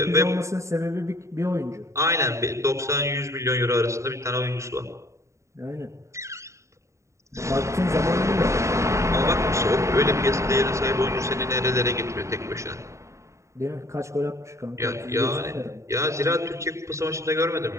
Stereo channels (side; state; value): left; late; 0.14 ms